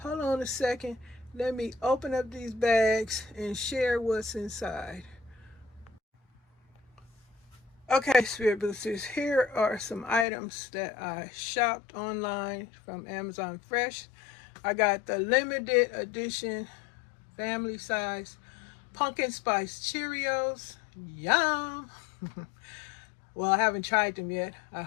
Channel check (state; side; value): drops out; right; at 10.2 s